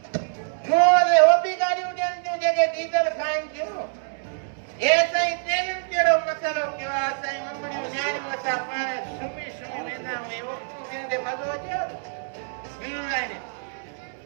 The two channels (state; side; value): silent; left; 60 dB below the other